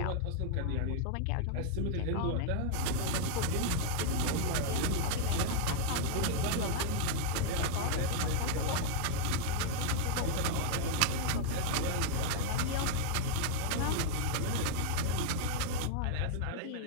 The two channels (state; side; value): different; both; correlation -0.01